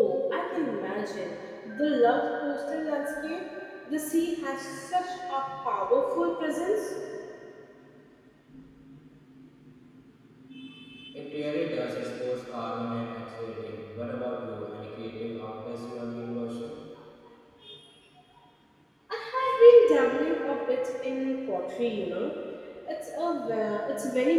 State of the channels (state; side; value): identical; both; correlation 1.00